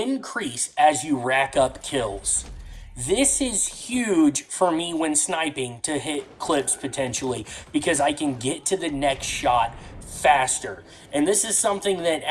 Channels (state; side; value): identical; both; correlation 1.00